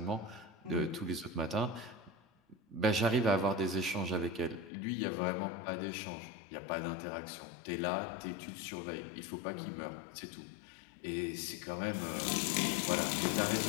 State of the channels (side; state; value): right; drops out; at 4.7 s